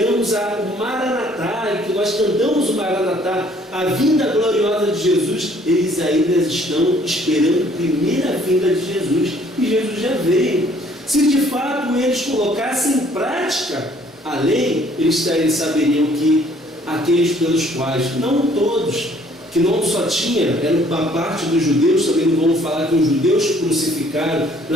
o Maranatá, e que nós cantamos o Maranatá, a vinda gloriosa de Jesus, eles ainda estão esperando a primeira vinda de Jesus, e Jesus já veio. Se de fato eles colocassem em prática a lei, eles saberiam que aqueles pelos quais, não todos, que não só tinha, era uma parte dos judeus, também não vamos falar que os judeus crucificaram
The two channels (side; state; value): both; normal; correlation 0.60